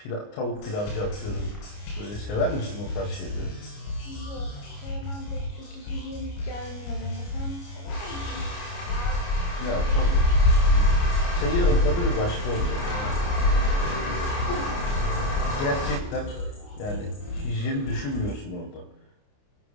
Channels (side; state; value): right; late; 29 ms